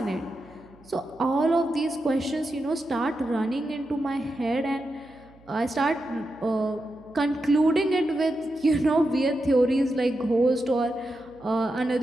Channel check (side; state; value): right; noise; hum, 27 dB below the sound